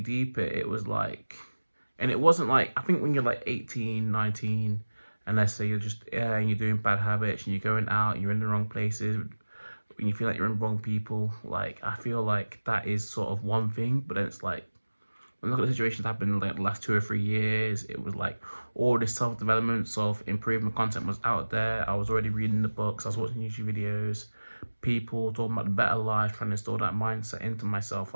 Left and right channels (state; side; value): inverted; both; correlation -1.00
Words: it, it was like, and it wasn't like, I think when you're like 18, 19, and let's say you're just, yeah, and you're doing bad habits and you're going out and you're in the wrong places, when you feel like you're in wrong people, like, I feel like that is sort of one thing. But then it's like, when I look at the situations that happened in like the last 2 or 3 years, it was like all this self-development, self-improvement content was out there. I was already reading the books, I was watching YouTube videos, people talking about the better life, trying to install that mindset into myself.